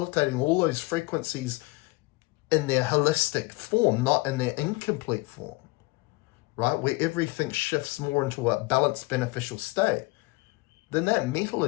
all those frequencies in their holistic form, not in their incomplete form, right, where everything shifts more into a balanced, beneficial state, then that metal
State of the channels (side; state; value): right; quieter; 23.3 dB